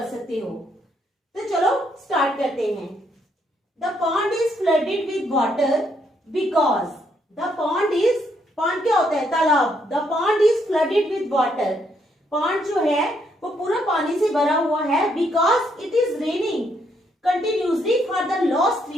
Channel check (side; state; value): both; normal; correlation 0.74